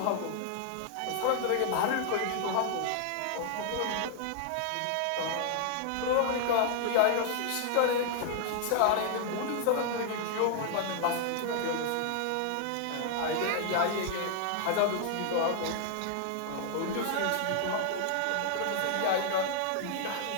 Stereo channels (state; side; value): different; both; correlation -0.01